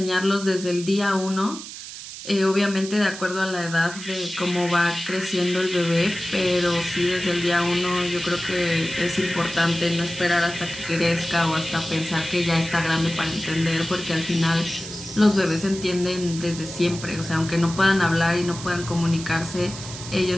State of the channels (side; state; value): right; noise; hiss, 11 dB below the sound